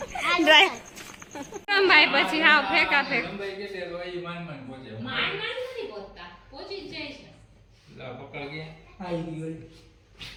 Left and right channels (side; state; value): both; identical; correlation 1.00